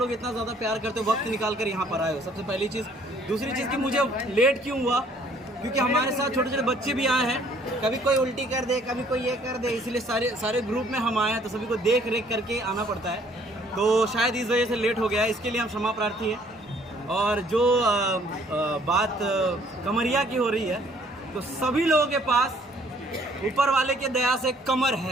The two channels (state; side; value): normal; both; correlation 0.60